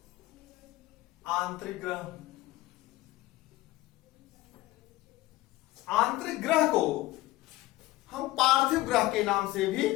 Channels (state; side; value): quieter; right; 17.9 dB